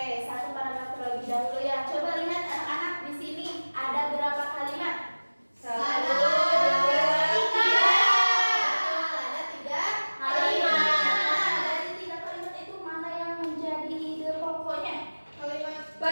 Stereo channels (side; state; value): both; inverted; correlation -1.00